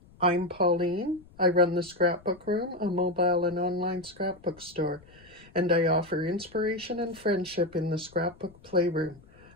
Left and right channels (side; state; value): left; noise; rumble, 25 dB below the sound